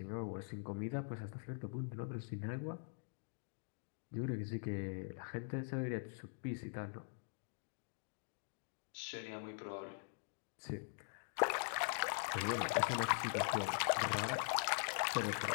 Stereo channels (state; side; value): silent; right; digital silence